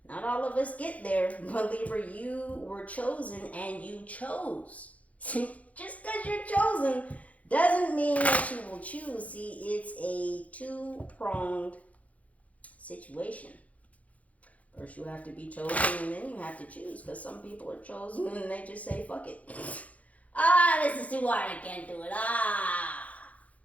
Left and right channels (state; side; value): late; right; 0.068 ms